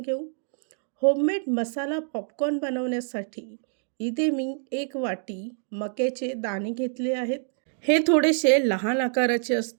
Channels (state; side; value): silent; left; 57 dB below the other